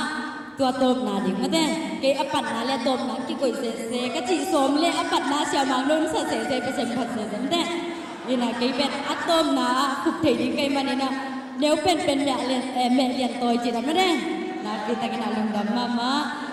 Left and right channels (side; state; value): both; identical; correlation 1.00